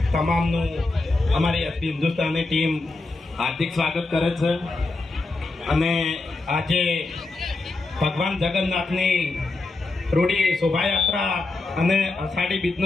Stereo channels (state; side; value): quieter; right; 3.3 dB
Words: તમામનું અમારી એસપી હિન્દુસ્તાની ટીમ હાર્દિક સ્વાગત કરે છે. અને આજે ભગવાન જગન્નાથની રૂડી શોભાયાત્રા અને અષાઢી